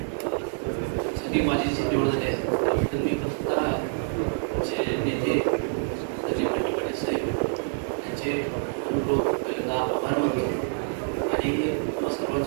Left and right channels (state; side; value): silent; left; 60 dB below the other